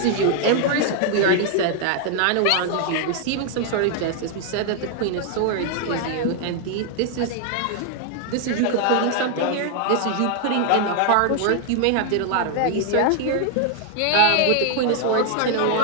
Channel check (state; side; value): different; both; correlation 0.00